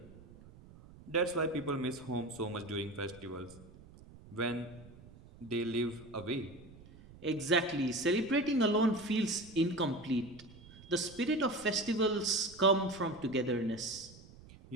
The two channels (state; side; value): noise; right; rumble, 20 dB below the sound